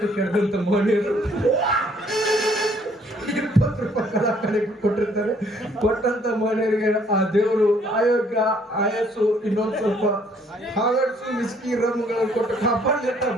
ಕೆಡದಂತ ಮನೆಯವರು 20 ರೂಪಾಯಿ ಕಲ ಕಡೆ ಕೊಟ್ಟಿರ್ತಾರೆ ಕೊಟ್ಟಂತ ಮನೆಯವರಿಗೆ ಆ ದೇವರು ಆಯೋಗ್ಯ ಆಯಸ್ಸು ಇನ್ನೊಂದು ಸ್ವಲ್ಪ ಹಾಗಡ್ಸು ಮಿಸ್ಕಿ ರಮ್ಗಳನ್ನು ಕೊಟ್ಟು ಕಾಪಾಡ್ಲಿಟ್ಟ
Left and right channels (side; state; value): both; normal; correlation 0.63